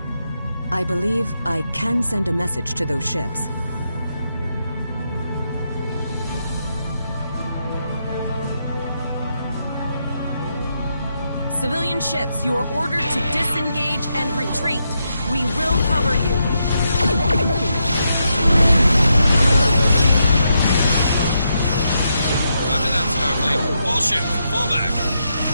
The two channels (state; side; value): inverted; both; correlation -0.82